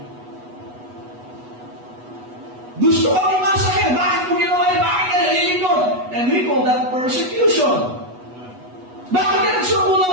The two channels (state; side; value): late; left; 8.2 ms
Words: Gusto kang imasakit. Bakit mo ginawa yun? Bakit ka nalilingkod? And we call that persecution. Bakit ka nagsukulang